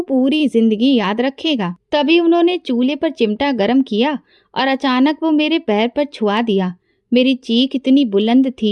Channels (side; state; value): both; identical; correlation 1.00